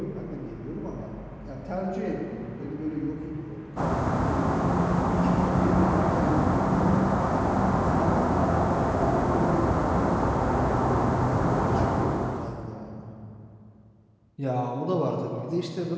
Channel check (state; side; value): identical; both; correlation 1.00